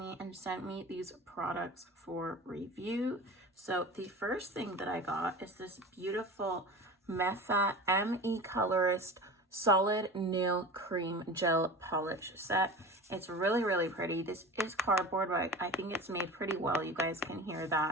and sent me these products for review. So the first thing that I got is this beautiful Mefa ME Colorist Solid Nail Cream Gel Polish set. It's really pretty. This is cardboard, but I think it's made pretty well. You guys can hear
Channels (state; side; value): normal; both; correlation 0.33